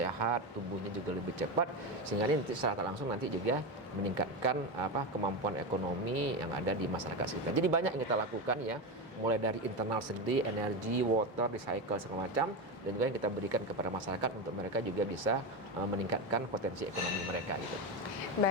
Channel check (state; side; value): normal; both; correlation 0.16